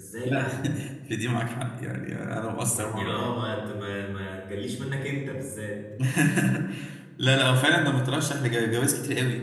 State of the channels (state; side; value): identical; both; correlation 1.00